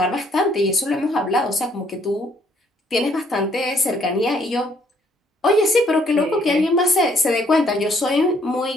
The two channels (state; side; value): normal; both; correlation 0.66